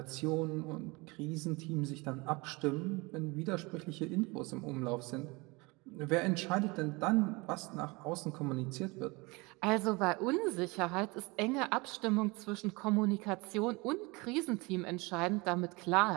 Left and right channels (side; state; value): left; quieter; 25.6 dB